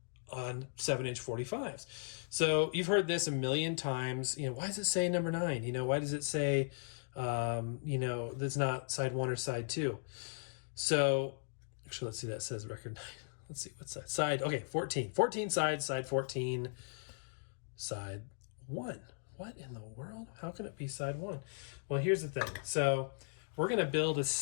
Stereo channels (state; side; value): silent; right; digital silence